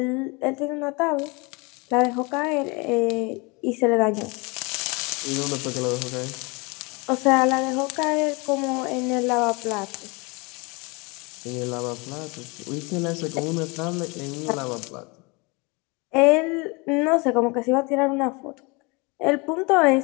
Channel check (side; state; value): right; quieter; 27.9 dB